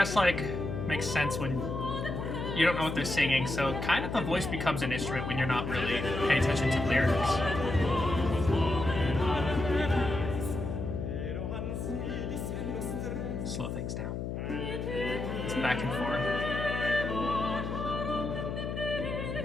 like makes sense when you don't know what they're singing, so kind of the voice becomes an instrument when you're not really paying attention to lyrics. Slow things down. It's back and forth.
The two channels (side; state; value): left; noise; hum, 4 dB below the sound